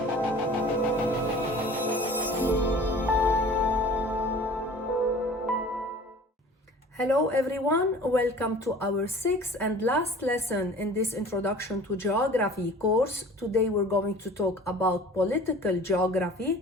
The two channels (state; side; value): normal; both; correlation 0.45